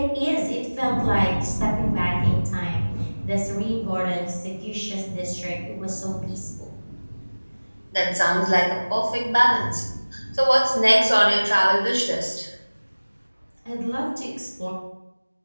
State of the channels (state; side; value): inverted; both; correlation -1.00